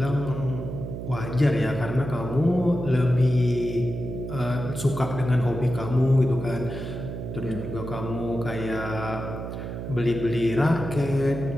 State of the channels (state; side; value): noise; right; hum, 7 dB below the sound